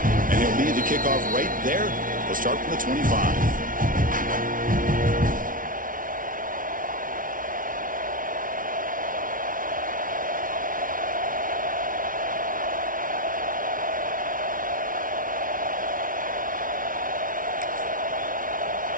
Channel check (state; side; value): late; left; 0.39 ms